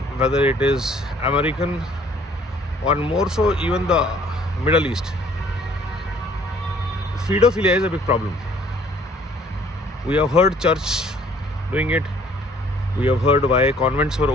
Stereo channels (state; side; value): normal; both; correlation 0.58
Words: whether it is American, or more so even the Middle East, pedophilia is a big problem. We have heard church doing it. We have heard why convents were